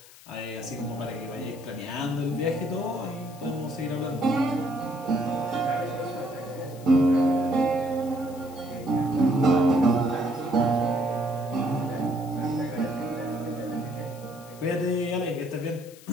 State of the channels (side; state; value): left; noise; hiss, 21 dB below the sound